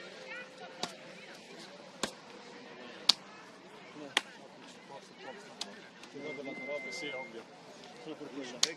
Sì, ovvio. Solo per quello.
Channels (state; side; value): identical; both; correlation 1.00